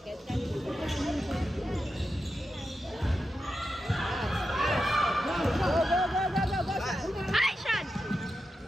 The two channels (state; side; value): normal; both; correlation 0.89